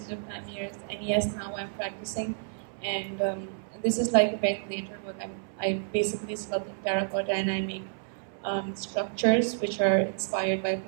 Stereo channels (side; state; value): left; silent; 58 dB below the other